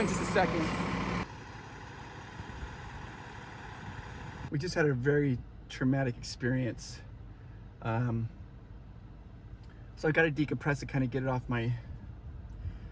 in just a second. We just had a very traumatic experience. So I got to decompress it, kind of get it off my...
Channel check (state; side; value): identical; both; correlation 1.00